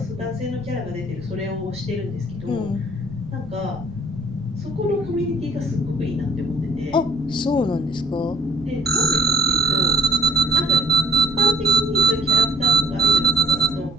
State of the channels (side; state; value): right; noise; rumble, 17 dB below the sound